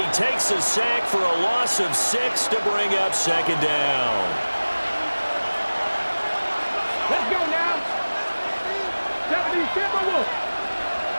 takes a sack for a loss of 6 to bring up 2nd down. Let's go now. 77.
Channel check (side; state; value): both; inverted; correlation -1.00